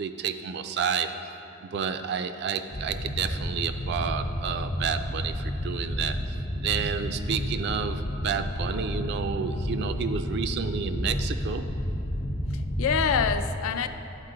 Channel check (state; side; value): normal; both; correlation 0.38